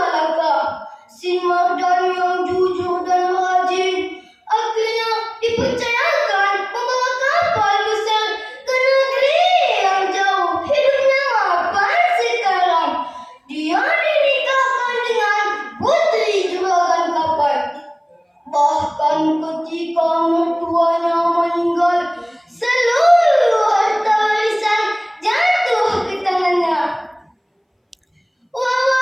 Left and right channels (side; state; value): both; identical; correlation 1.00